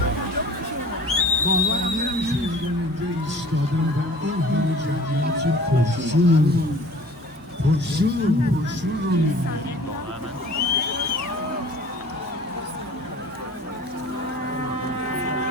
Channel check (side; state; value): both; normal; correlation 0.46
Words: باورم نمیشه اینجا ایستادم و این همه جمعیت پرشور